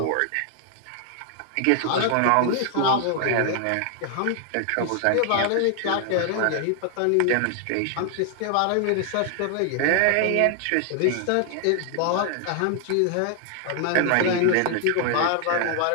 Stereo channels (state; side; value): different; both; correlation 0.00